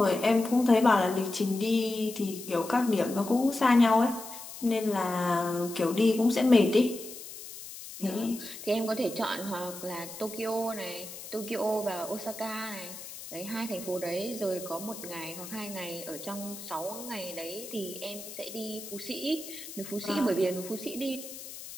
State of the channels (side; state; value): left; noise; hiss, 12 dB below the sound